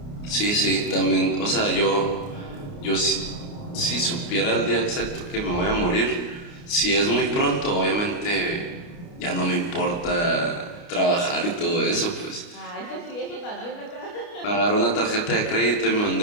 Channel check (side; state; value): right; late; 29 ms